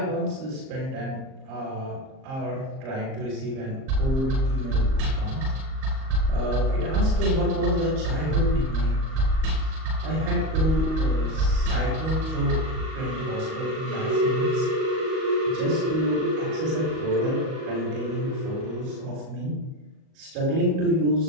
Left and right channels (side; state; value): left; late; 38 ms